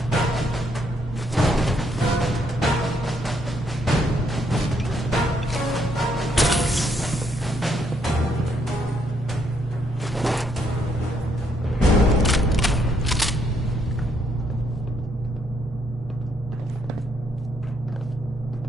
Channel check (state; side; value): normal; both; correlation 0.72